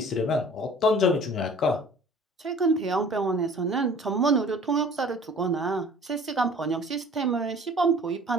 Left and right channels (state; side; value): normal; both; correlation 0.48